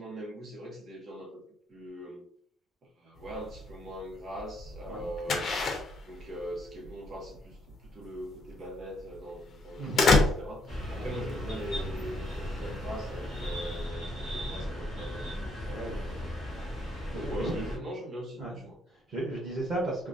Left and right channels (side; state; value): both; normal; correlation 0.72